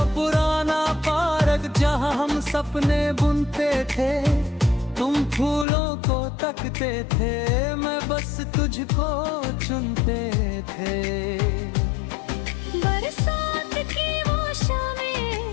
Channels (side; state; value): right; drops out; at 5.7 s